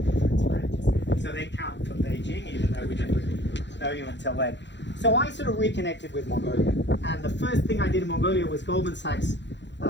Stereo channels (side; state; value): right; late; 0.52 ms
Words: so they count for Beijing, even though we didn't really know you until then. So I sort of reconnected with Mongolia, and the first thing I did in Mongolia was Goldman Sachs